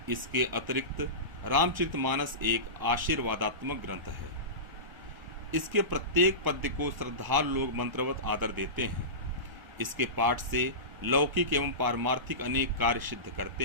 इसके अतिरिक्त रामचरितमानस एक आशीर्वादात्मक ग्रंथ है। इसके प्रत्येक पद्य को श्रद्धालु लोग मंत्रवत आदर देते हैं। इसके पाठ से लौकिक एवं पारमार्थिक अनेक कार्य सिद्ध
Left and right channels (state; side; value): late; left; 1.0 ms